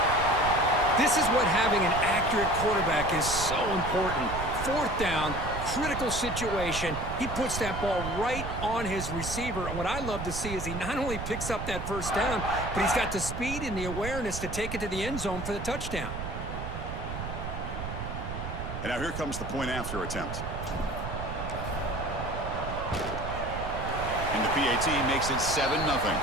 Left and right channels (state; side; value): noise; right; rumble, 6 dB below the sound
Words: This is what having an accurate quarterback is so important. Fourth down, critical situation. He puts that ball right on his receiver. And what I love to see is he not only picks up that first down, but he's got the speed and the awareness to take it to the end zone for the touchdown. And now here comes the point after attempt. And the PAT makes it 7-0.